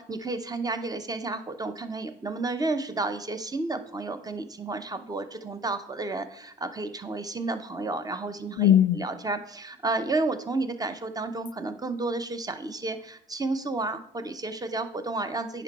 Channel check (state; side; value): normal; both; correlation 0.48